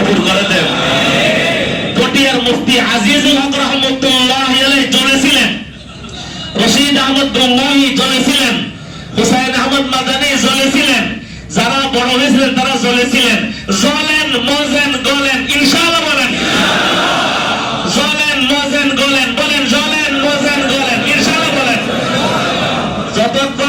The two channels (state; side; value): identical; both; correlation 1.00